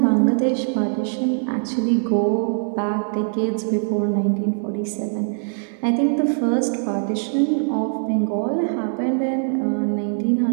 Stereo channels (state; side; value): silent; left; digital silence